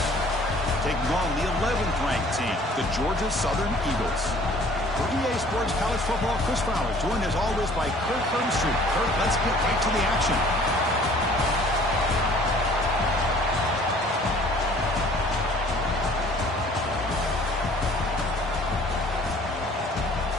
taking on the 11th ranked team, the Georgia Southern Eagles. For EA Sports College Football, Chris Fowler, joined as always by Kurt Hermstreet. Kurt, let's get right to the action.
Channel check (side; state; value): both; normal; correlation 0.53